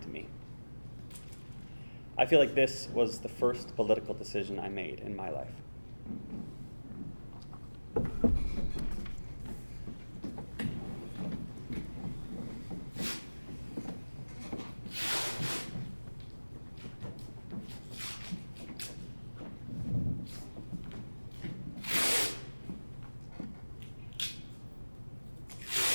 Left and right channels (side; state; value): both; inverted; correlation -1.00